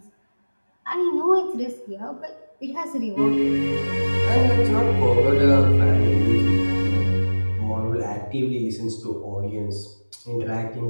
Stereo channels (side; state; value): both; inverted; correlation -1.00